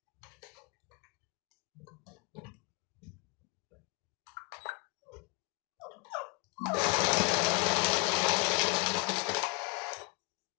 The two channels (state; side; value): quieter; right; 27.8 dB